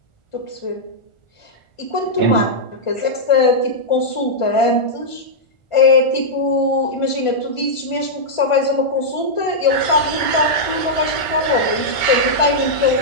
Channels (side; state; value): right; late; 1.4 ms